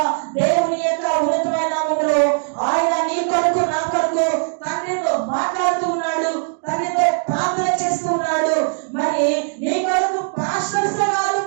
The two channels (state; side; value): silent; left; digital silence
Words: దేవుని యొక్క ఉన్నతమైన నామములో ఆయన నీ కొరకు నా కొరకు తండ్రితో మాట్లాడుతూ ఉన్నాడు, తండ్రితో ప్రార్థన చేస్తూ ఉన్నాడు. మరి నీ కొరకు పాస్టర్స్ కాదు